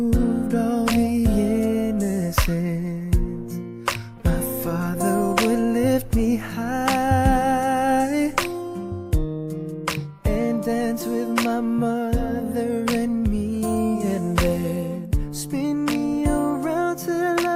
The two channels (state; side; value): identical; both; correlation 1.00